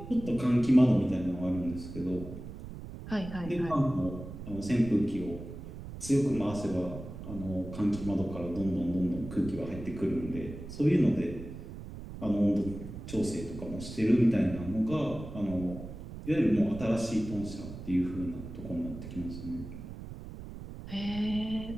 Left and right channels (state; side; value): noise; right; rumble, 11 dB below the sound